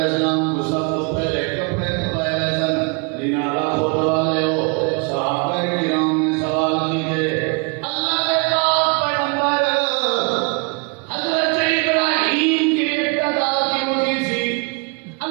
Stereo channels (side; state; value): left; quieter; 32.2 dB